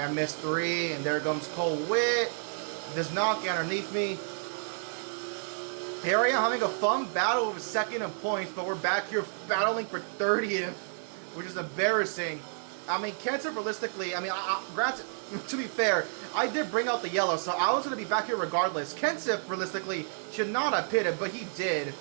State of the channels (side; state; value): left; silent; digital silence